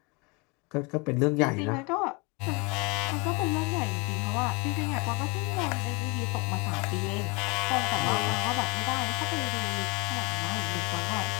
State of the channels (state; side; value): quieter; right; 28.8 dB